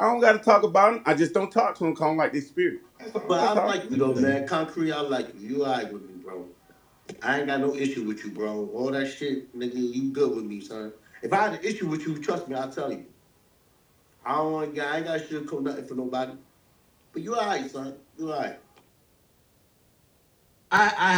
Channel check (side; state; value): both; identical; correlation 1.00